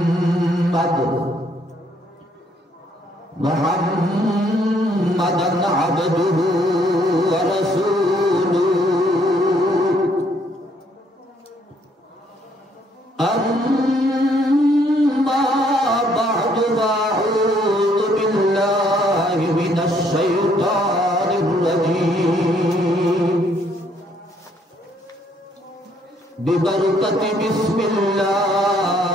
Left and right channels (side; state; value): both; normal; correlation 0.67